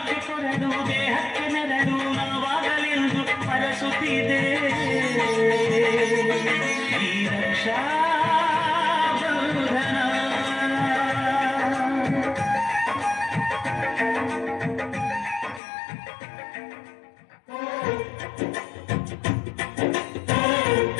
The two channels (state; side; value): drops out; right; at 15.6 s